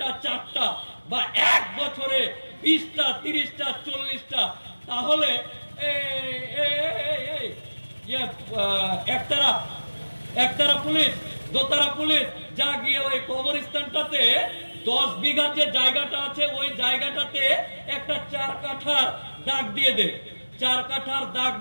4টা, বা 1 বছরে 20টা, 30টা, 40টা। তাহলে একতারা পুলিশ, দোতারা পুলিশ যা গিয়ে ওই কবরস্থানটাতে 10 বিঘার যে জায়গাটা আছে ওই জায়গাটাতে একটা 4 কাঠার দাগ দিয়ে দে, 4 কাঠার দাগ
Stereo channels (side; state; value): both; inverted; correlation -1.00